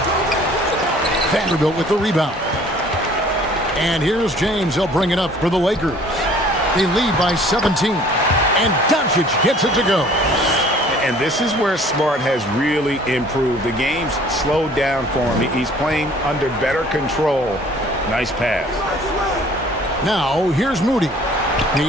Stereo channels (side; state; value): both; normal; correlation 0.53